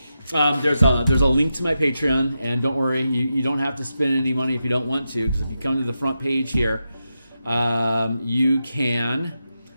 there's a link to my Patreon, and don't worry, you don't have to spend any money if you don't want to, because if you come to the front page here, you can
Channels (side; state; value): both; inverted; correlation -0.88